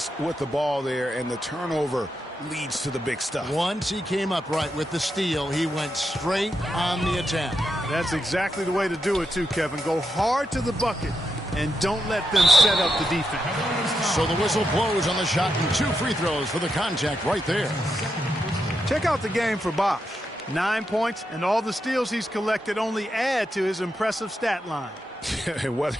with the ball there, and the turnover leads to the big stuff. Once he came up right with the steal, he went straight on the attack. That's exactly the way to do it too, Kevin. Go hard to the bucket and don't let them set up the defense. So the whistle blows on the shot and 2 free throws for the contact right there. Check out the game for Bosch. 9 points, and all the steals he's collected only add to his impressive stat line. Whether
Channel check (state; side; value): normal; both; correlation 0.84